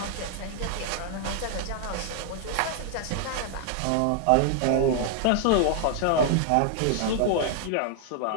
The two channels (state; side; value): different; both; correlation 0.00